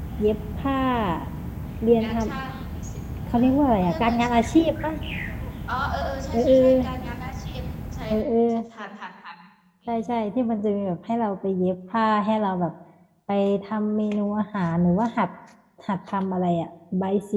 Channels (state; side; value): identical; both; correlation 1.00